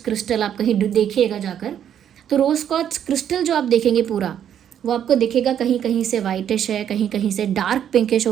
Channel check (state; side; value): quieter; left; 9.5 dB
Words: आप कहीं देखिएगा जाकर, तो रोज़ क्वार्ट्ज क्रिस्टल जो आप देखेंगे पूरा वो आपको दिखेगा कहीं कहीं से वाइटिश है, कहीं कहीं से डार्क पिंकिश